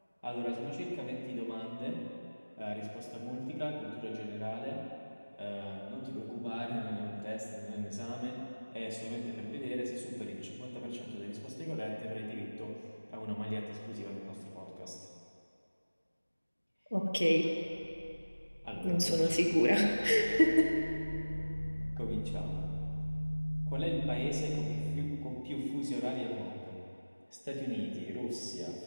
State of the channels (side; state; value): both; inverted; correlation -1.00